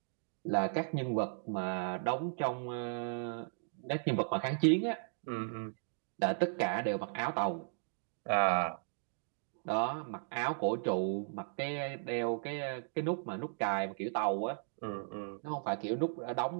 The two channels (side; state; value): left; silent; digital silence